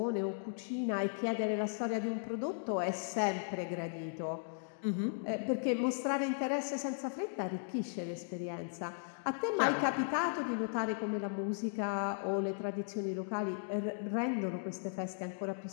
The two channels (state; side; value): silent; right; digital silence